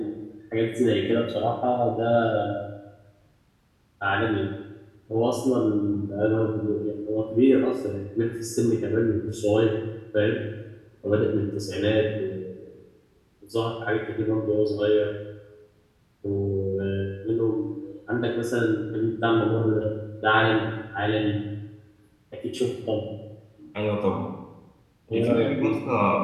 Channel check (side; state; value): both; identical; correlation 1.00